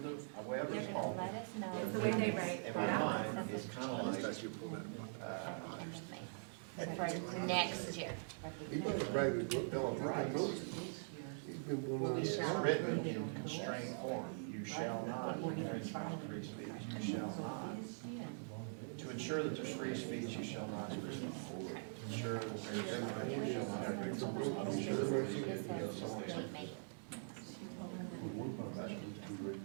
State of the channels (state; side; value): silent; left; digital silence